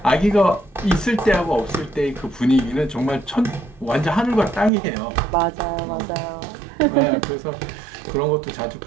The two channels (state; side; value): drops out; left; at 4.7 s